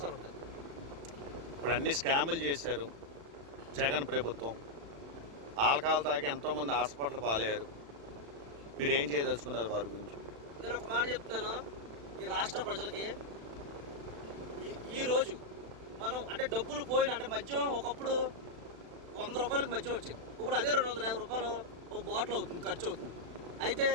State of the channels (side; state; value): left; late; 36 ms